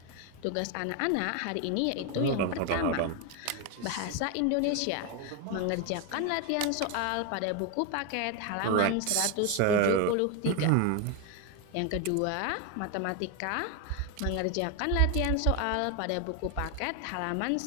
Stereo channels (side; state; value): both; different; correlation 0.01